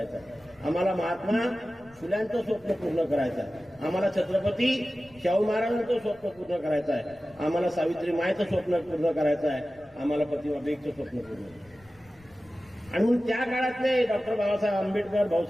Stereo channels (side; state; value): left; noise; rumble, 28 dB below the sound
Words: आहे, आम्हाला महात्मा फुल्यांचं स्वप्न पूर्ण करायचं आहे, आम्हाला छत्रपती शाहू महाराजांचं स्वप्न पूर्ण करायचं आहे, आम्हाला सावित्री मायचं स्वप्न पूर्ण करायचं आहे, आम्हाला प्रतिमा बेगचं स्वप्न पूर्ण. आणि म्हणून त्या काळातले डॉक्टर बाबासाहेब आंबेडकर,